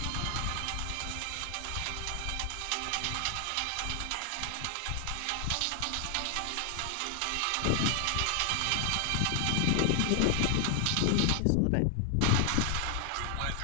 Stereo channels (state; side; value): different; both; correlation 0.00